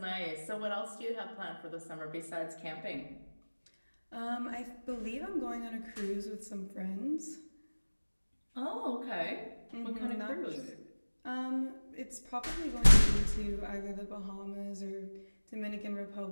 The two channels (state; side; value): inverted; both; correlation -1.00